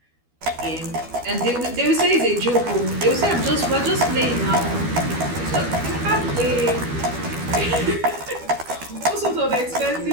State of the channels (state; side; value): late; left; 12 ms